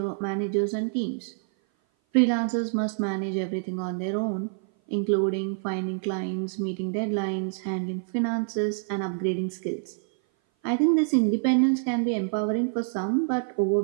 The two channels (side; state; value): left; silent; 56 dB below the other